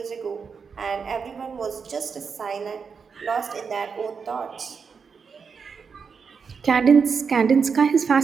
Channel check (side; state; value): left; quieter; 5.8 dB